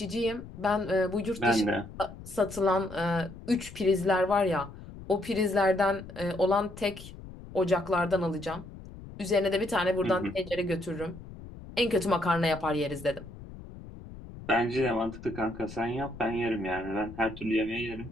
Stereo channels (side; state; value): left; noise; rumble, 15 dB below the sound